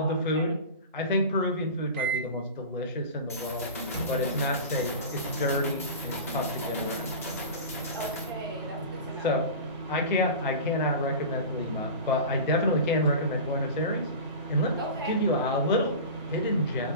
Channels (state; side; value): inverted; both; correlation -0.31